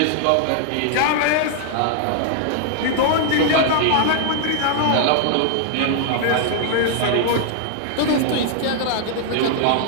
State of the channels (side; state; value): both; different; correlation -0.01